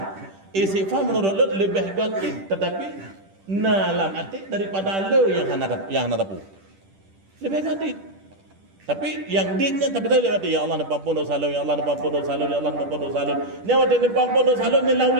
Istighfar menurut lu lebih gaib, tetapi nalam arti daripada lu yang hana tapu. Lebih gaib. Tapi yang ditnya tapi tadi ya Allah nampun dosa lu, ya Allah nampun dosa lu, ya Allah nampun dosa lu. Nyawa dia nampun dosa lu ni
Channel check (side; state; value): left; late; 10 ms